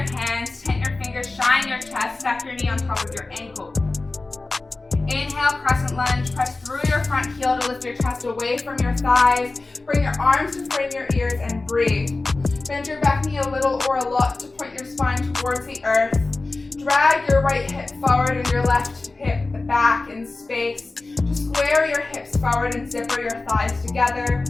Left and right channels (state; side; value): quieter; right; 3.3 dB